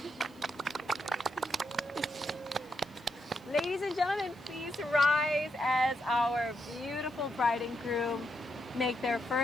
Ladies and gentlemen, please rise as our beautiful bride and groom make their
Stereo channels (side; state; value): left; noise; hiss, 29 dB below the sound